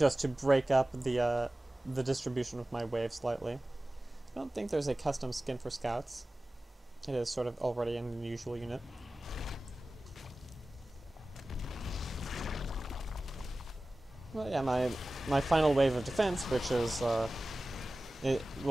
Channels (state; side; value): normal; both; correlation 0.96